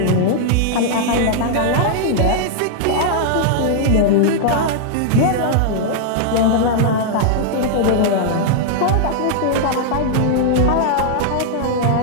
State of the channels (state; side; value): different; both; correlation -0.01